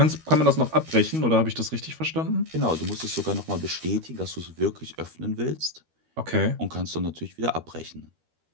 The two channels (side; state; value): left; late; 13 ms